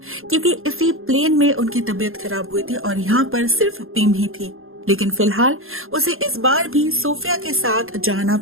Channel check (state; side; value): late; left; 0.61 ms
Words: क्योंकि इसी प्लेन में उनकी तबीयत खराब हुई थी और यहाँ पर सिर्फ पिम ही थी। लेकिन फिलहाल उसे इस बार भी सोफिया के साथ जाना